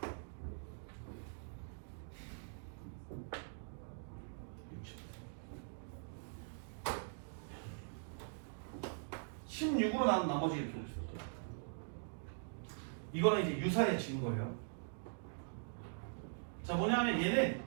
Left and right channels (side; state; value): left; silent; digital silence